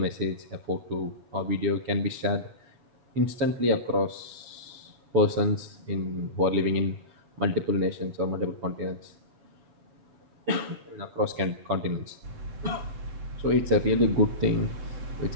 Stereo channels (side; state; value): left; late; 7.1 ms